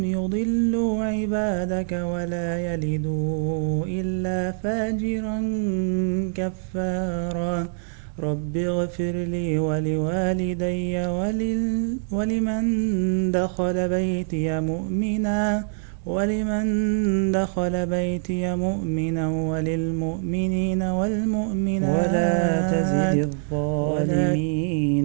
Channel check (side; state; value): left; silent; 62 dB below the other